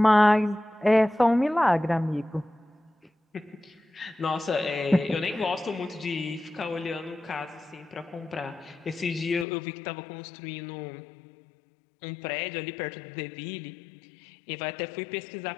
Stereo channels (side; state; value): right; drops out; at 9.5 s